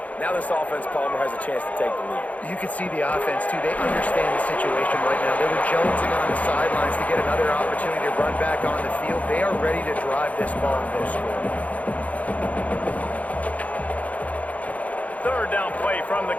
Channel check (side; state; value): right; late; 0.070 ms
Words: Now this offense, Palmer, has a chance to take the lead. You can see the offense, too. They understand the situation right now. They were jonesing on the sidelines to get another opportunity to run back on the field. They are ready to drive this ball and go score. Third down play from the